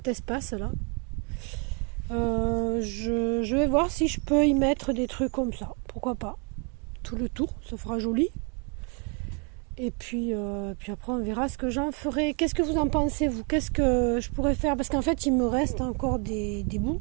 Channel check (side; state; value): left; quieter; 36.0 dB